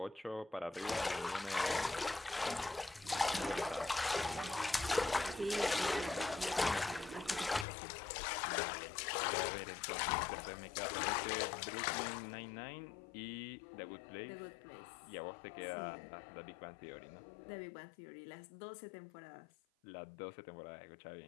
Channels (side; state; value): right; drops out; at 7.7 s